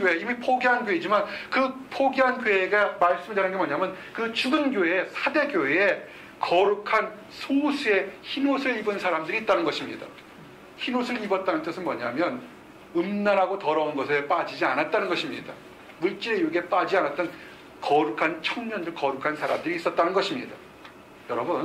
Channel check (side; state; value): both; identical; correlation 1.00